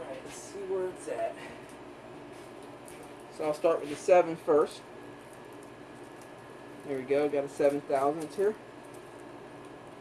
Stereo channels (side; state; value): both; identical; correlation 1.00